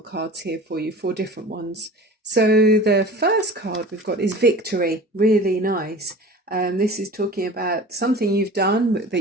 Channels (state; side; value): normal; both; correlation 0.39